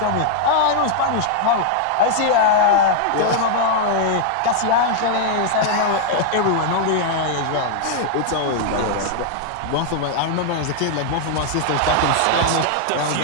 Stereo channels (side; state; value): both; different; correlation 0.00